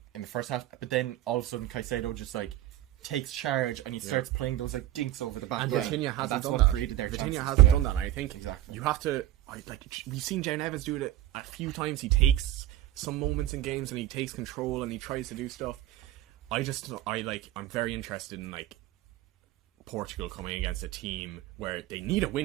in the first half. But then all of a sudden, Caicedo just like takes charge and he starts playing those like dinks over the back. and Yeah. Vitinha hasn't That's done what that. created their Vitinha chances. hasn't Yeah. done that. And I think Exactly. you have to. We've seen Jane Evans do it a few times. He takes some moments in games and he takes control and he tries to do stuff. I'm very interested in like Portugal coming against a team where they need a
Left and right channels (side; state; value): left; quieter; 13.9 dB